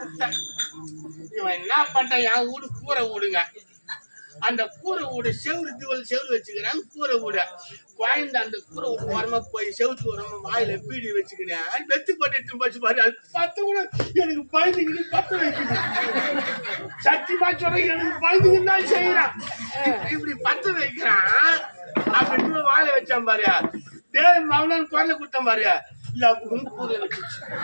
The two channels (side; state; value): both; inverted; correlation -1.00